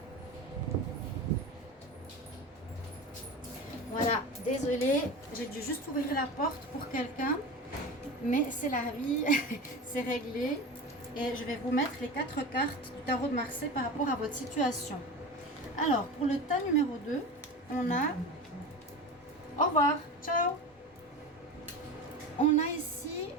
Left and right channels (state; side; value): normal; both; correlation 0.28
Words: Voilà, désolée, j'ai dû juste ouvrir la porte pour quelqu'un, mais c'est la vie, c'est réglé. Et je vais vous mettre les 4 cartes du tarot de Marseille par rapport à votre situation. Alors, pour le tas numéro 2, on a... Au revoir, ciao. On a ici